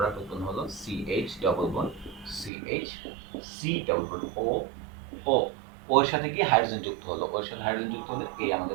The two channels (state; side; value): drops out; left; at 2.5 s